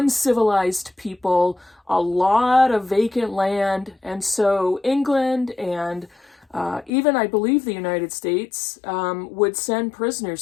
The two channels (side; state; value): right; drops out; at 6.9 s